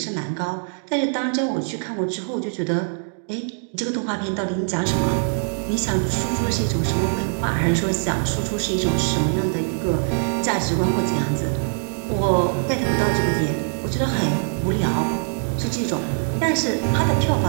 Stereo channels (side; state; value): left; silent; 64 dB below the other